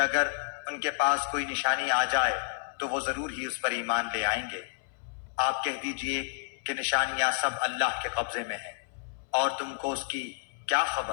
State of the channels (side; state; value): right; silent; 58 dB below the other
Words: ان کے پاس کوئی نشانی آ جائے تو وہ ضرور ہی اس پر ایمان لے آئیں گے۔ آپ کہہ دیجئے کہ نشانیاں سب اللہ کے قبضے میں ہیں، اور تم کو اس کی کیا